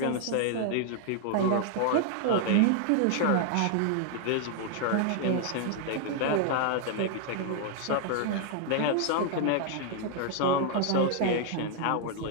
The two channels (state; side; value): different; both; correlation 0.00